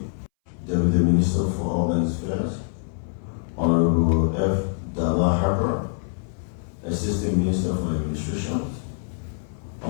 Deputy Minister for Urban Affairs, Honorable F. Dalla Harper, Assistant Minister for Administration,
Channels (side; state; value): right; silent; 62 dB below the other